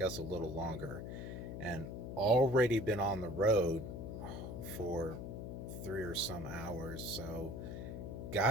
us a little longer. And already been on the road for 3 or some hours. So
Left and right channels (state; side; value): noise; left; hum, 7 dB below the sound